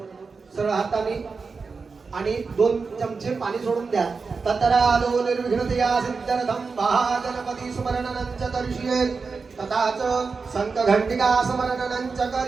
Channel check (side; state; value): left; quieter; 4.7 dB